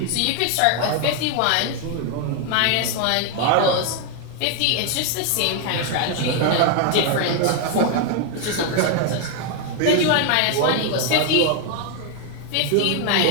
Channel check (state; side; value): different; both; correlation 0.01